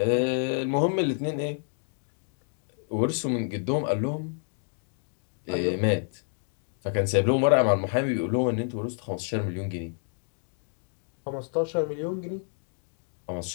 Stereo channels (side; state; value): right; silent; 59 dB below the other